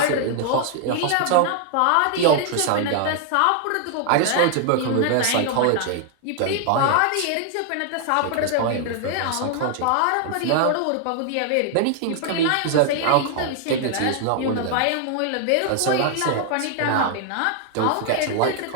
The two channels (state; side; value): different; both; correlation 0.00